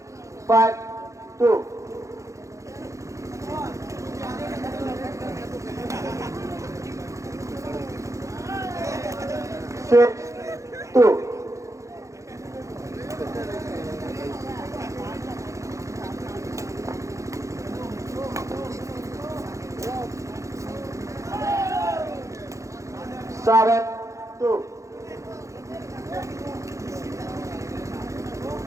5, 2. Six, 2. Seven, 2.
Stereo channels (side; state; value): left; late; 0.15 ms